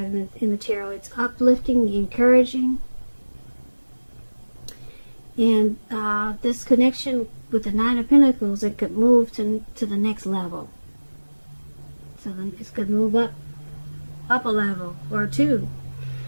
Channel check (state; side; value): inverted; both; correlation -1.00